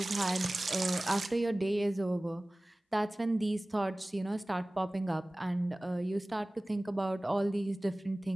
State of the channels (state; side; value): normal; both; correlation 0.98